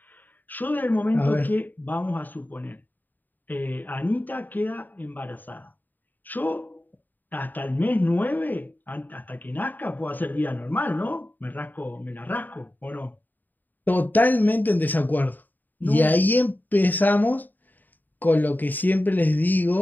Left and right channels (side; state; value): right; late; 0.087 ms